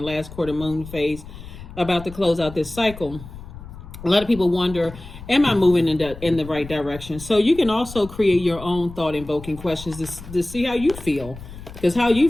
last quarter moon phase about to close out this cycle, a lot of people wonder, am I moving in the right direction? So you can also create your own thought invoking questions to see how you feel, because how you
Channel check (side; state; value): left; noise; rumble, 14 dB below the sound